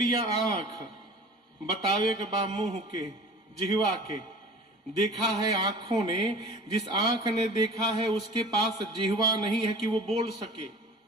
आंख, बतावे के बा मुंह के, जिहवा के। देखा है आंखों ने, जिस आंख ने देखा है उसके पास जिहवा नहीं है कि वो बोल सके,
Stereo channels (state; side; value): normal; both; correlation 0.41